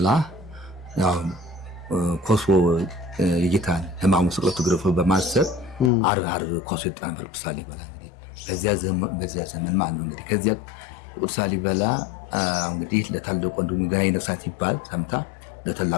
ያው ኮሶ የጌታን ሕማሙ ስቅለቱ ግርፎ በማሰብ ዓርብ ኮሶ ይጣን ቅዱስ ላሊበላ እንግዲህ በዚያ ዘመን ማለት ነው እንግዲህ። ከዚያ ቅዱስ ላሊበላ እንግዲህ ለታላቁ ወንድሙ ገና ይነሳት ይባል ሰምታ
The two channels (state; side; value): drops out; right; at 5.9 s